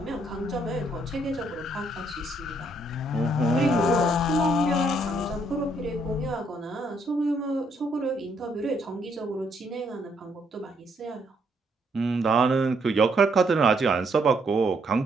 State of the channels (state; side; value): normal; both; correlation 0.71